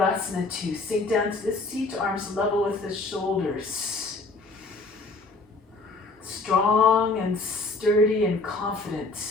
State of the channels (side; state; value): right; quieter; 3.4 dB